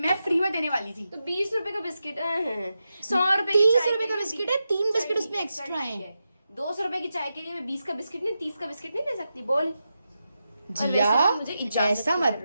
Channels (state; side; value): inverted; both; correlation -0.89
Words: मैं फ्री में देने वाली थी। तो 20 रुपए का बिस्किट 100 रुपए 30 रुपए का बिस्किट है, 3 बिस्किट उसमें एक्स्ट्रा है। 200 रुपए की चाय के लिए मैं 20 का बिस्किट नहीं, 30 का बिस्किट नहीं दे सकती, बोल। जिया वैसे भी मुझे इजाजत ऐसा की मत